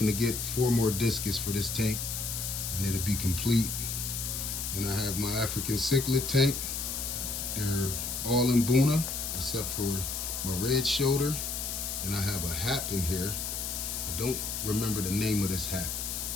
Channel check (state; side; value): noise; left; hiss, 3 dB below the sound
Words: to get 4 more discus for this tank, and it'll be complete. Then I have my African cichlid tank. They're all in Buna, except for my red shoulder. And I have a hat in here. I don't remember the name of this hat.